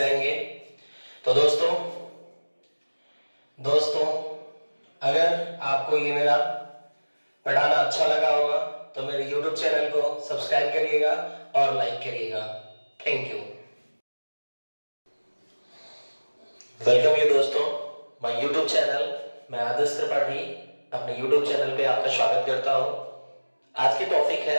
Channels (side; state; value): both; inverted; correlation -1.00